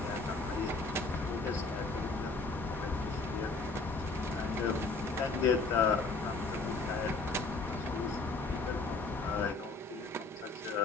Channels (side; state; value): right; quieter; 3.8 dB